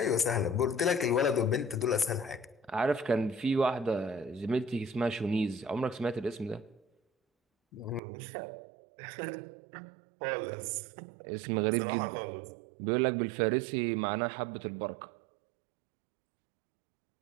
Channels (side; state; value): left; drops out; at 8.0 s